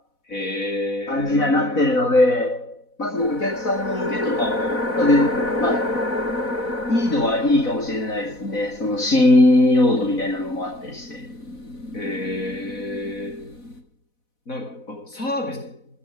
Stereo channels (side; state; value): right; late; 4.1 ms